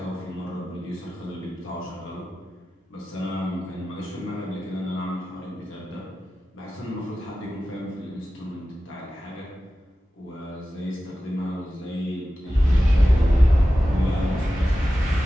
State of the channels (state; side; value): normal; both; correlation 0.94